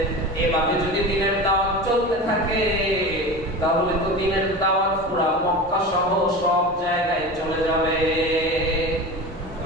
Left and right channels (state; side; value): normal; both; correlation 0.30